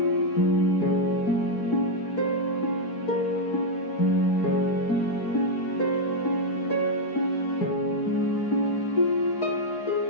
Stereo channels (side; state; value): right; late; 4.7 ms